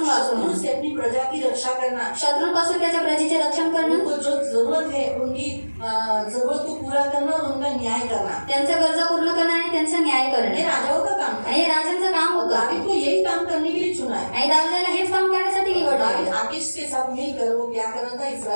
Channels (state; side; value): inverted; both; correlation -1.00